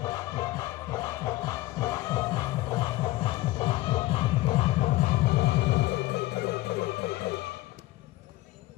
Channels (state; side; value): quieter; right; 17.9 dB